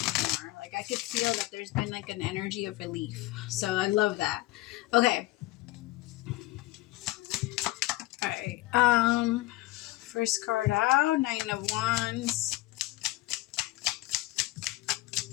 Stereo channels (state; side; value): quieter; right; 18.7 dB